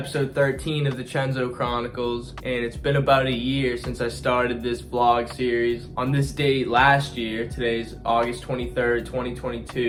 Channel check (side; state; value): both; identical; correlation 1.00